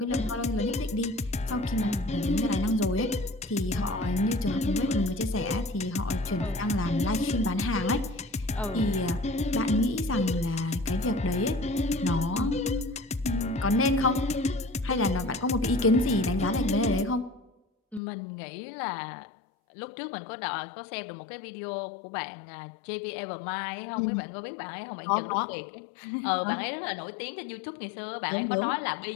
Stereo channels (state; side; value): drops out; right; at 18.0 s